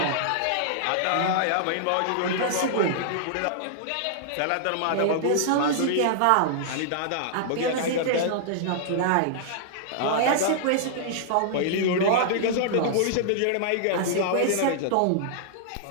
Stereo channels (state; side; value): different; both; correlation -0.01